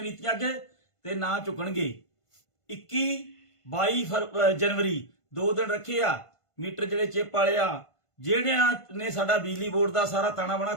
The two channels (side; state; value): right; late; 1.5 ms